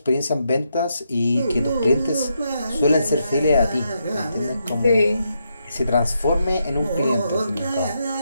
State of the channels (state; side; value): inverted; both; correlation -0.81